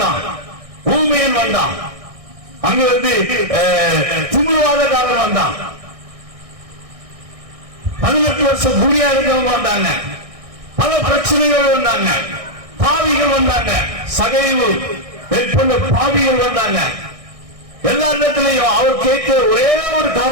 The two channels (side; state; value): left; late; 1.6 ms